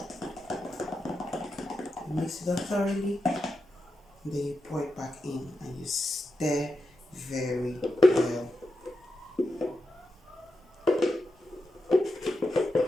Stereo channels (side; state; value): both; normal; correlation 0.88